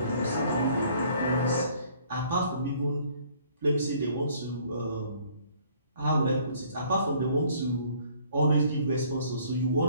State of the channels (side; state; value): both; inverted; correlation -0.59